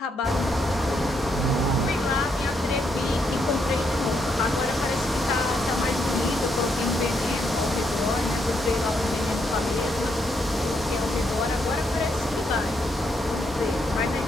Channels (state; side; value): normal; both; correlation 0.77